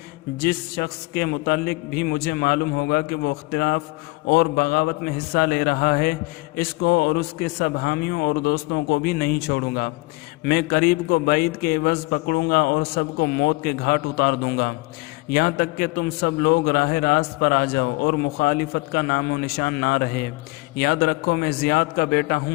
جس شخص کے متعلق بھی مجھے معلوم ہوگا کہ وہ اختلاف اور بغاوت میں حصہ لے رہا ہے، اس کو اور اس کے سب حامیوں اور دوستوں کو بھی نہیں چھوڑوں گا۔ میں قریب کو بعید کے عوض پکڑوں گا اور سب کو موت کے گھاٹ اتار دوں گا، یہاں تک کہ تم سب لوگ راہ راست پر آ جاؤ اور مخالفت کا نام و نشان نہ رہے۔ یاد رکھو میں زیاد کا بیٹا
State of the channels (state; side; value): quieter; right; 23.7 dB